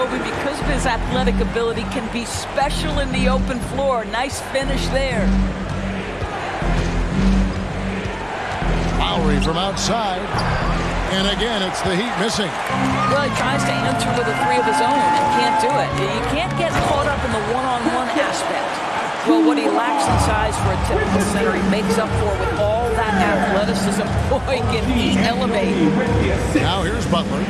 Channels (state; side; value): identical; both; correlation 1.00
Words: because of his athletic ability, can be special in the open floor. Nice finish there. Lowry from outside. And again, it's the Heat missing. Well, he tries to enter with a 3 of his own and can't do it. You can't get caught up in the one-on-one aspect. Well, what he lacks in size for a typical center, he makes up for with all that athleticism. Boy, can he elevate. Now here's Butler.